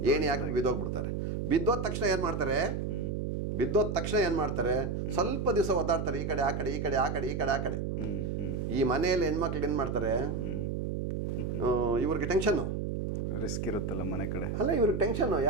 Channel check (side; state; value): right; noise; hum, 2 dB below the sound